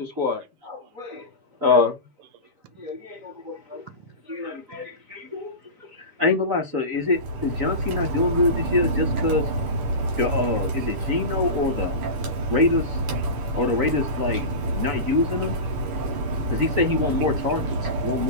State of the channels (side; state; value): left; late; 6.9 ms